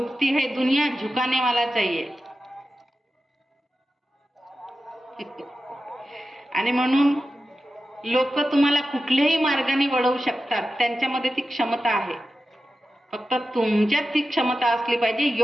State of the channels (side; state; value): both; normal; correlation 0.92